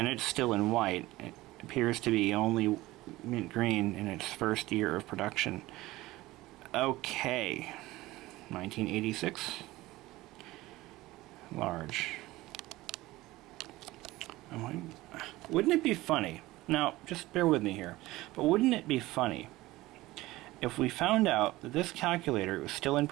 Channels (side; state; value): left; quieter; 18.4 dB